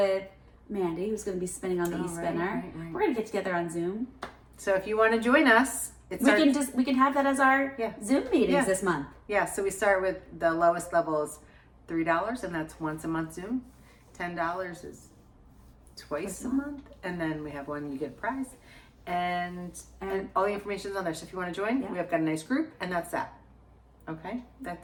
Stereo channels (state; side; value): identical; both; correlation 1.00